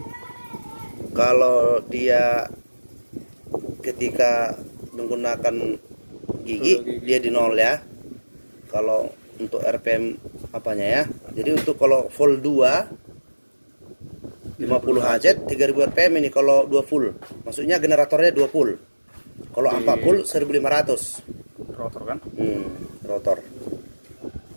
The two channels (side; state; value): both; inverted; correlation -1.00